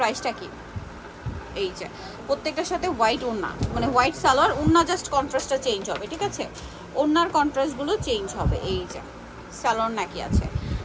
কি? এই যে প্রত্যেকটার সাথে হোয়াইট ওড়না, মানে হোয়াইট সালোয়ার, ওড়না জাস্ট কন্ট্রাস্টটা চেঞ্জ হবে, ঠিক আছে, ওড়নার কন্ট্রাস্টগুলো চেঞ্জ হবে। এই যে সালোয়ার নাকি আছে,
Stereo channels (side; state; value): both; identical; correlation 1.00